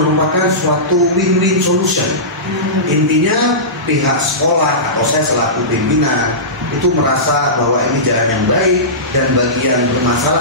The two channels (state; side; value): normal; both; correlation -0.19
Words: suatu win-win solution. Intinya pihak sekolah atau saya selaku pimpinan itu merasa bahwa ini jalan yang baik dan bagi yang